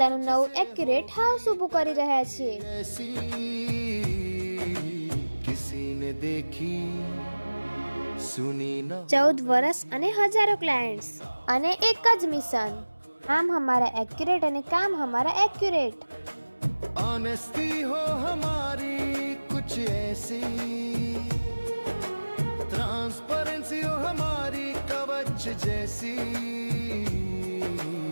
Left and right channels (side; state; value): both; inverted; correlation -1.00